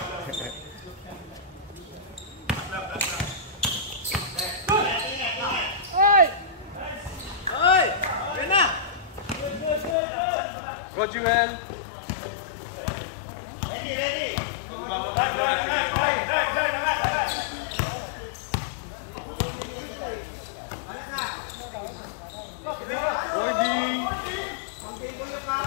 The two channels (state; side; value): drops out; right; at 10.0 s